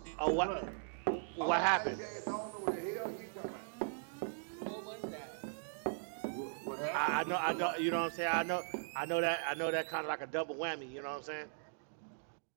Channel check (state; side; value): silent; left; digital silence